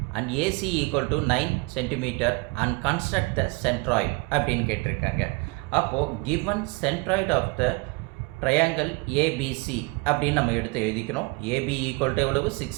and AC equal to 9 cm and construct the centroid அப்படின்னு கேட்டிருக்காங்க. அப்போது given centroid of the triangle ABC அப்படின்னு நம்ம எடுத்து எழுதிக்கணும். AB equal to எவ்வளவு 6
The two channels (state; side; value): quieter; left; 26.7 dB